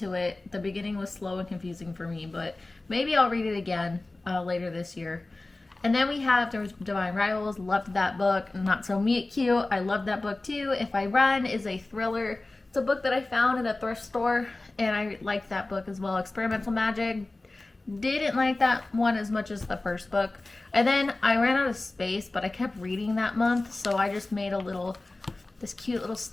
it. The beginning was slow and confusing for me, but maybe I'll read it again later this year. And then we have Divine Rivals. Loved that book. Not So Meet Cute. I loved that book too. If I Run is a thriller. It's a book that I found in a thrift store, and I liked that book as well. Experimental Magic. Didn't like that one as much as the first book. And then I ran out of space, but I kept reading that month, so I just made this cute little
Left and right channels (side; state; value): right; quieter; 3.0 dB